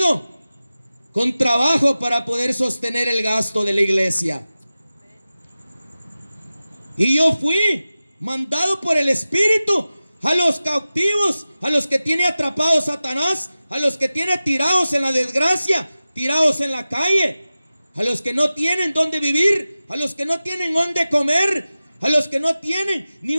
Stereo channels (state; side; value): inverted; both; correlation -0.95